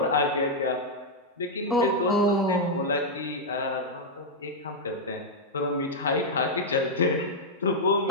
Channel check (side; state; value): both; normal; correlation -0.03